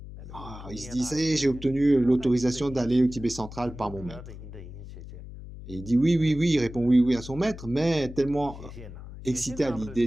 Il se dit, ça y est, j'ai obtenu l'autorisation d'aller au Tibet central par mon maître. Et il dit oui, il répond oui à son maître, mais tellement excité à l'idée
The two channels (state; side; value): noise; left; hum, 13 dB below the sound